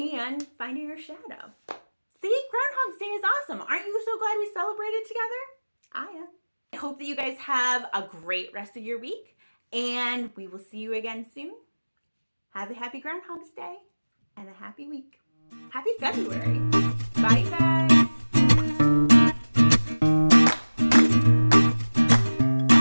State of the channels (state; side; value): inverted; both; correlation -1.00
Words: finding your shadow. See, Groundhog's Day is awesome. Aren't you so glad we celebrated together? I am. I hope that you guys have a great rest of your week, and we will see you again soon. Have a happy Groundhog's Day and a happy week. Happy February. Bye, you guys.